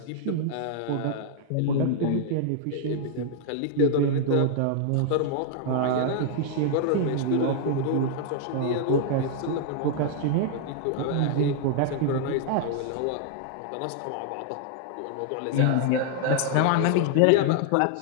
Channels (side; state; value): both; different; correlation -0.01